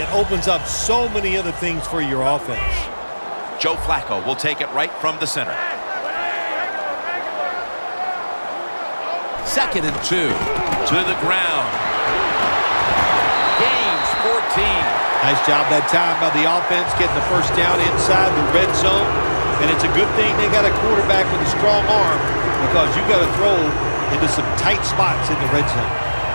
opens up so many other things for your offense. Joe Flacco will take it right from the center. Second and 2 to the ground. Gains 14. Nice job that time by the offense getting the first down inside the red zone. And it's a good thing they got a quarterback with a strong arm, because you got to throw into some tight spots in the red zone.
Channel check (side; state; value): both; inverted; correlation -1.00